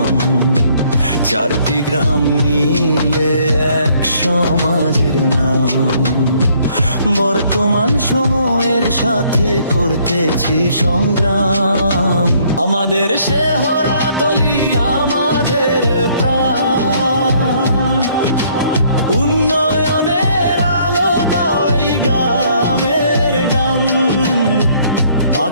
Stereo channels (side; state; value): both; inverted; correlation -0.64